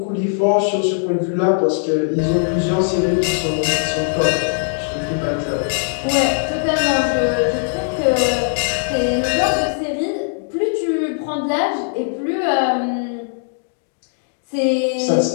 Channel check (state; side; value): silent; right; digital silence